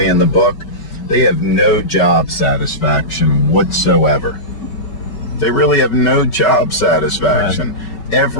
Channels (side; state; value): right; late; 5.4 ms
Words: in the book, they have no job satisfaction whatsoever. They really have no job satisfaction. Right.